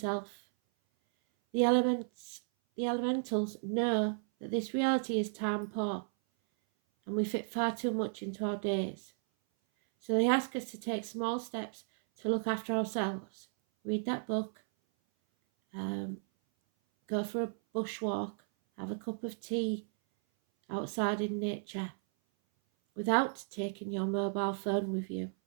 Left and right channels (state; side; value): silent; left; 55 dB below the other